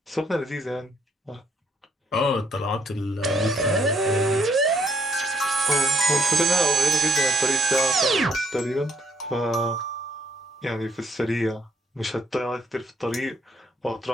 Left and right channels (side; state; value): both; normal; correlation 0.68